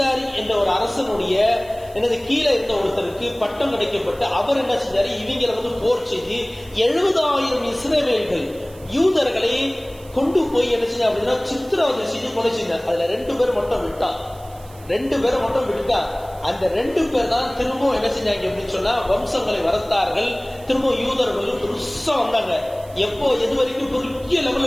என்ற ஒரு அரசனுடைய கீழே இருந்த ஒருத்தருக்கு பட்டம் கிடைக்கப்பட்டு அவர் என்ன செஞ்சாரு, இவங்களை வந்து போர் செய்து 70,000 இஸ்ரவேல்கள் யூதர்களை கொண்டு போய் என்ன செஞ்சா அப்படின்னா சித்திரவதை செய்து கொலை செஞ்சார். அதுல 2 பேர் மட்டும் விட்டான். அந்த 2 பேர் தான் திரும்ப என்ன செஞ்சாங்க அப்படின்னு சொன்னா வம்சங்களை வளர்த்தார்கள். திரும்ப யூதர்கள் பெருசா வந்தாங்க. எப்போ எது வரைக்கும் பெரிய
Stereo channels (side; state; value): right; noise; hiss, 24 dB below the sound